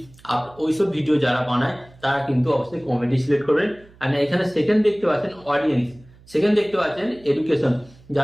ওইসব ভিডিও যারা বানায় তারা কিন্তু অবশ্যই কমেডি সিলেক্ট করবেন। আর এখানে সেকেন্ড দেখতে পাচ্ছেন অডিয়েন্স, সেকেন্ড দেখতে পাচ্ছেন এডুকেশন,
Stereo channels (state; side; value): noise; right; hum, 26 dB below the sound